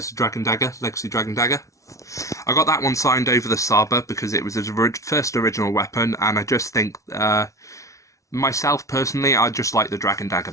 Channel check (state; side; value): late; right; 0.15 ms